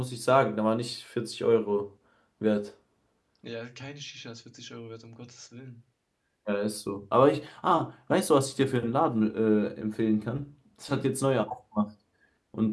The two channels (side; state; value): both; identical; correlation 1.00